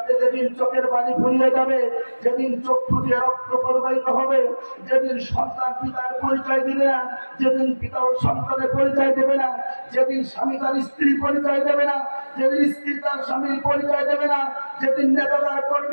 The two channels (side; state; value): both; inverted; correlation -1.00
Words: যেদিন চোখের পানি ফুরিয়ে যাবে, যেদিন চক্ষু দিয়ে রক্ত প্রবাহিত হবে, যেদিন সন্তান পিতার পরিচয় দিবে না, যেদিন পিতা ও সন্তানের পরিচয় দেবে না, যেদিন স্বামী তার স্ত্রীর পরিচয় দেবে না, যেদিন স্ত্রী তার স্বামীর পরিচয় দেবে না, যেদিন নেতা তার